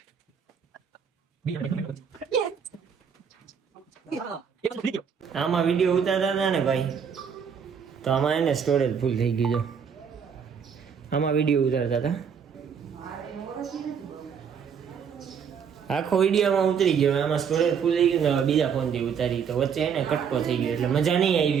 આમાં વિડીયો ઉતારતા હતા ને ભાઈ તો આમાં એને સ્ટોરેજ ફૂલ થઈ ગયું જો આમાં વિડીયો ઉતારતા હતા આખો વિડીયોમાં ઉતરી ગયો આમાં સ્ટોરેજ ફૂલ થઈ ગયું ને હવે બીજા ફોનથી ઉતારી તો વચ્ચે એને કટકો થઈ ગયો એટલે મજા નહીં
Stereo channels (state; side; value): quieter; left; 7.1 dB